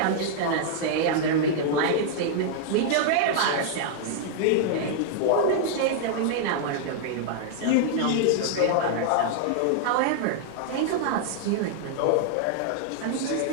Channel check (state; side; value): different; both; correlation -0.01